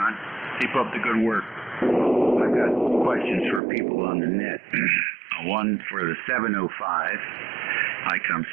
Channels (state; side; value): drops out; left; at 3.6 s